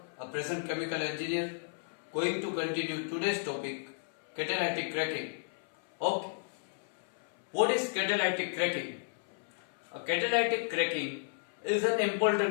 a present chemical engineer, going to continue today's topic, catalytic cracking. Okay, what is catalytic cracking? A catalytic cracking is an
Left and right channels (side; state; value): right; silent; 56 dB below the other